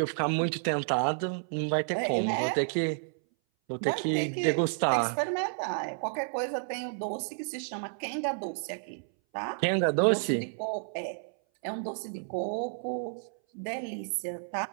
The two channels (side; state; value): left; silent; 57 dB below the other